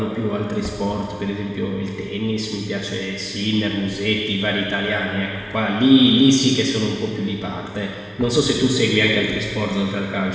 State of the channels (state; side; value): identical; both; correlation 1.00